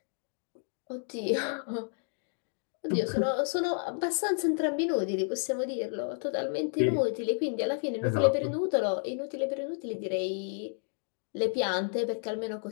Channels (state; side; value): silent; right; 57 dB below the other